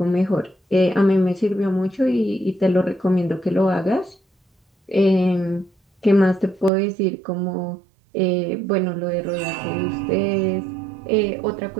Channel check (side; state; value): left; drops out; at 6.7 s